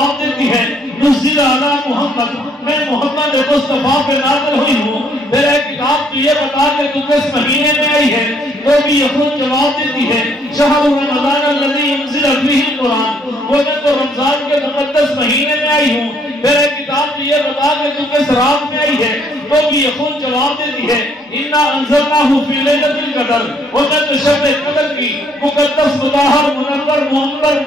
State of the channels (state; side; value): normal; both; correlation 0.66